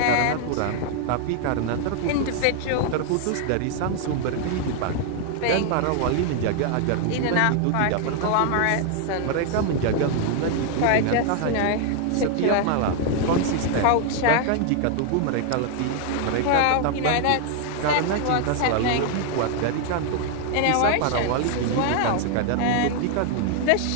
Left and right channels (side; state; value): both; different; correlation 0.00